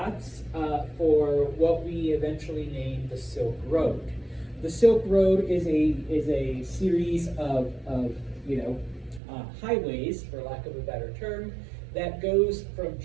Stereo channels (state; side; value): drops out; left; at 9.2 s